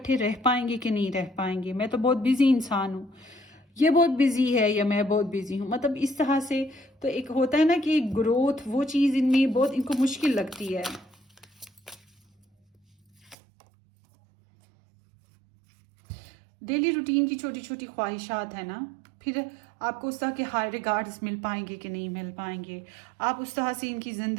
रह पाएंगे कि नहीं रह पाएंगे, मैं तो बहुत बिजी इंसान हूँ, ये बहुत बिजी है या मैं बहुत बिजी हूँ, मतलब इस तरह से। तो एक होता है ना कि ग्रोथ, वो चीज़ इनमें बहुत इनको मुश्किल लगती है। डेली रूटीन की छोटी छोटी ख्वाहिशात है ना, फिर आपको उस तरह के हाई रिगार्ड्स मिल पाएंगे कि नहीं मिल पाएंगे, आप उस तरह से इनकी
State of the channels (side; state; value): left; drops out; at 13.4 s